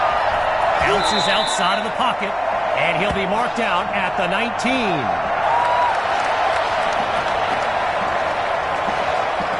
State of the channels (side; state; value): both; identical; correlation 1.00